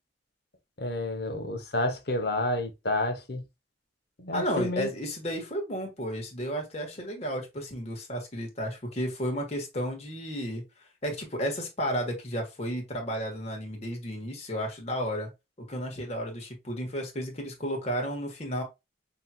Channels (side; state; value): both; normal; correlation 0.12